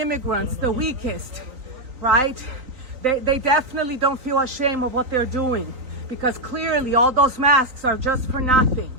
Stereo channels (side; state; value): left; late; 3.9 ms